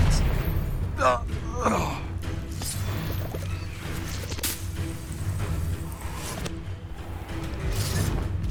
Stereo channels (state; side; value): identical; both; correlation 1.00